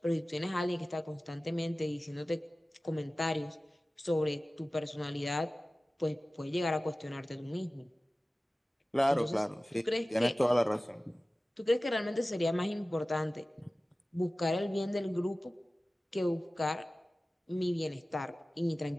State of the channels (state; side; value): normal; both; correlation 0.97